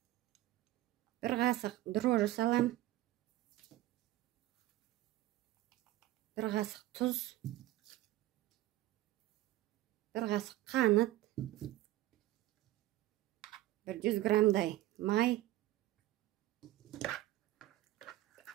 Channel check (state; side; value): quieter; left; 15.8 dB